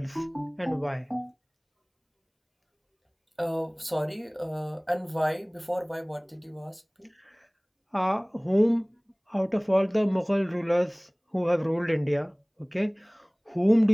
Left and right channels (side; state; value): both; identical; correlation 1.00